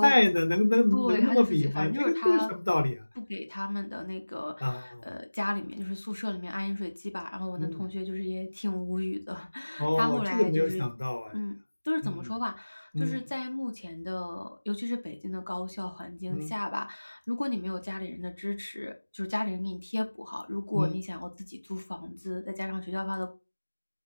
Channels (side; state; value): both; inverted; correlation -1.00